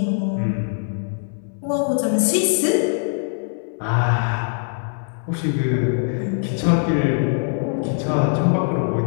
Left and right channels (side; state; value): right; silent; digital silence